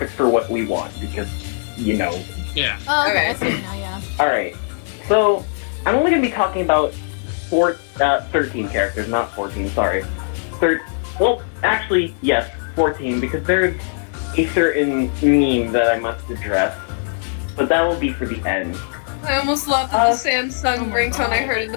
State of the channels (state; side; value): silent; right; digital silence